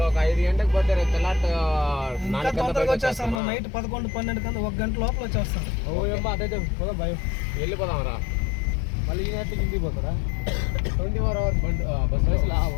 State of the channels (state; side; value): drops out; right; at 3.4 s